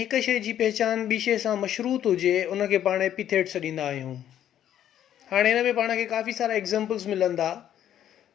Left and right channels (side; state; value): right; quieter; 10.8 dB